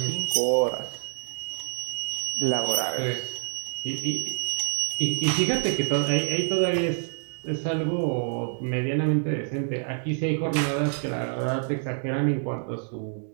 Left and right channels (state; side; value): silent; left; 60 dB below the other